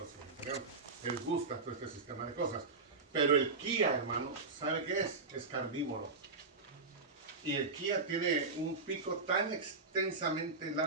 les gusta todo este sistema de cosas. Pero el kia, hermano, ¿sabe qué es? Es carnívoro. Y el kia tiene un pico tan extensamente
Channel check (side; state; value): left; quieter; 4.0 dB